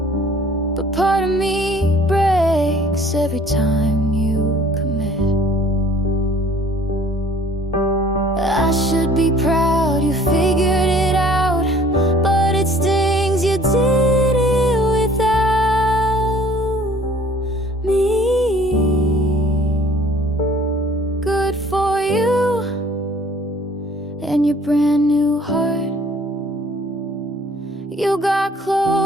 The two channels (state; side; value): normal; both; correlation 0.54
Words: but part of me breaks every time you commit. I should be proud you figured it out, but it stings you did it without me. Good for you and your brand new heart. You got